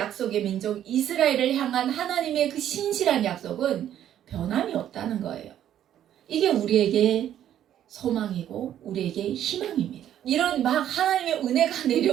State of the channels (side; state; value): left; quieter; 10.9 dB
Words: 민족 이스라엘을 향한 하나님의 그 신실한 약속은 변함이 없다는 거예요. 이게 우리에게 소망이고 우리에게 희망입니다. 이런 막 하나님의 은혜가